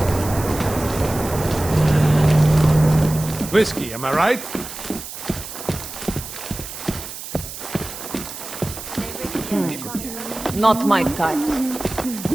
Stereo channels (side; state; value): right; noise; hiss, 10 dB below the sound